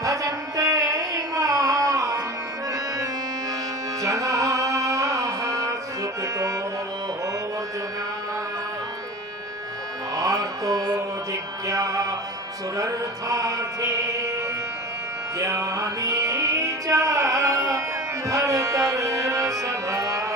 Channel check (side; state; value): both; normal; correlation 0.34